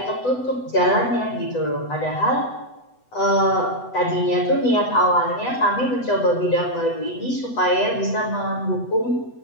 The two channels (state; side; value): late; right; 8.0 ms